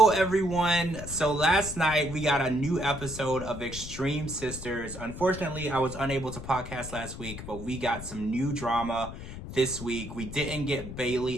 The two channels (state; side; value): noise; left; rumble, 10 dB below the sound